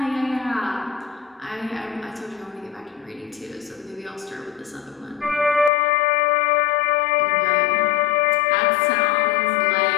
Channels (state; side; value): drops out; right; at 5.7 s